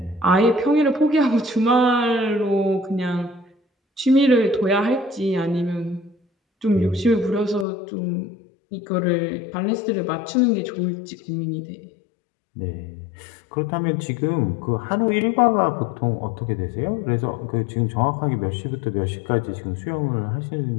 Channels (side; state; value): right; drops out; at 7.7 s